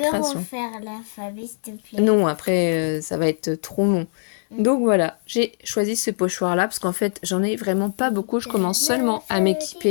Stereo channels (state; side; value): silent; right; digital silence